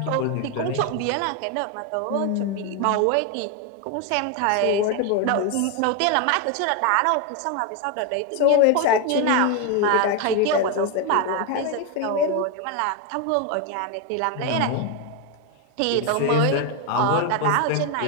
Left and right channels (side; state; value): both; different; correlation 0.01